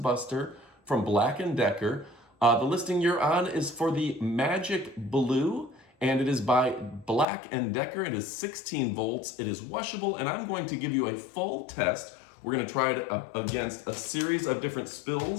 from Black & Decker. The listing you're on is for the Magic Blue, and it is by Black & Decker. It is 16 volts, it is washable, and I'm going to give you a full test. We're going to try it against a series of different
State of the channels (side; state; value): right; drops out; at 7.2 s